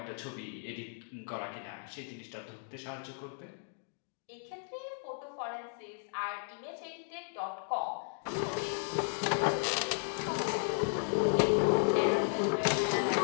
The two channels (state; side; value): silent; right; digital silence